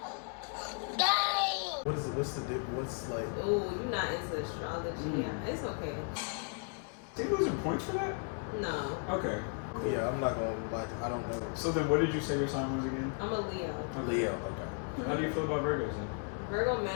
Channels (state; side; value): quieter; right; 39.9 dB